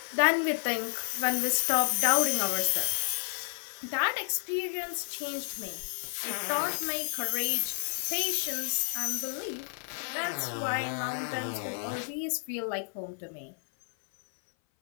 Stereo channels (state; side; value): silent; right; 57 dB below the other